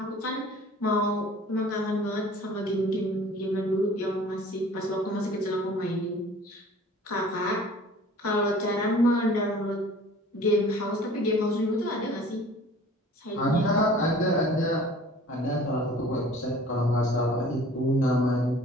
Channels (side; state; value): both; normal; correlation 0.48